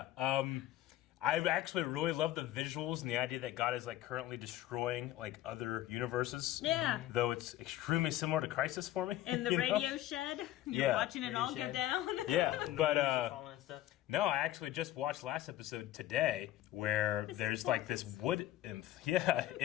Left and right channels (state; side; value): quieter; right; 14.3 dB